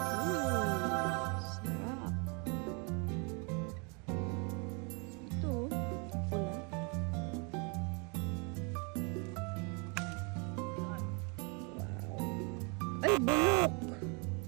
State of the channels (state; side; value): quieter; left; 33.6 dB